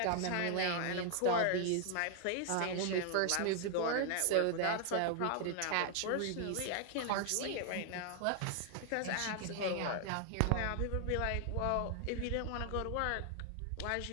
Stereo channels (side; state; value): both; different; correlation 0.00